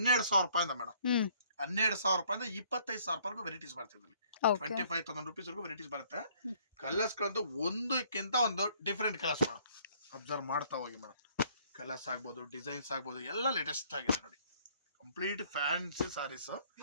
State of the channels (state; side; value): inverted; both; correlation -0.61